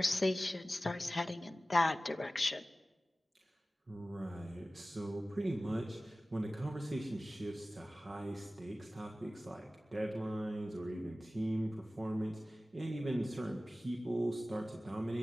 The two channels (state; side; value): normal; both; correlation 0.96